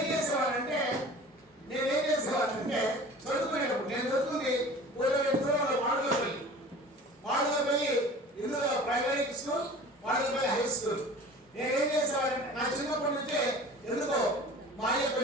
చేసేవాళ్ళంటే చదువుకునేటప్పుడు, నేను చదువుతుంది వాడుకోపల్లి, ఇందులో ప్రైమరీ స్కూల్, వాడుకోపల్లి హై స్కూల్. నేనేం చేసేవాళ్ళంటే నా చిన్నప్పటి నుంచే ఎందుకో మా అయ్య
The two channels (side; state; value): both; normal; correlation 0.42